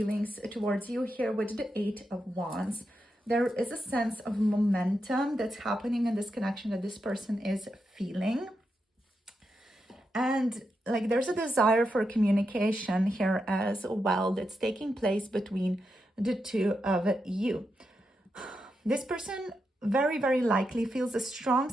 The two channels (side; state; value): both; normal; correlation 0.86